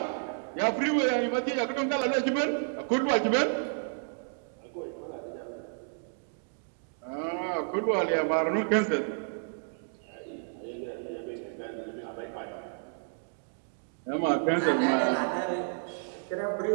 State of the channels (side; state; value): left; silent; digital silence